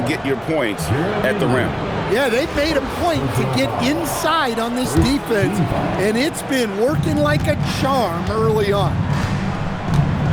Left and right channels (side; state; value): both; identical; correlation 1.00